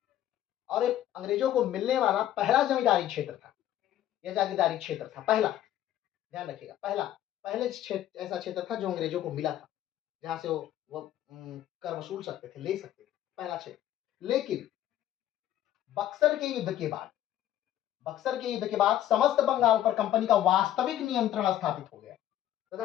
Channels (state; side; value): quieter; right; 12.3 dB